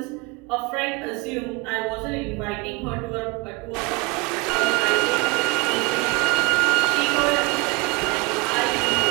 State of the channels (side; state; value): left; quieter; 26.6 dB